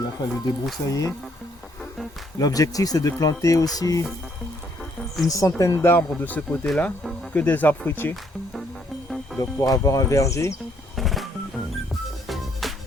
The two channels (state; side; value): normal; both; correlation 0.69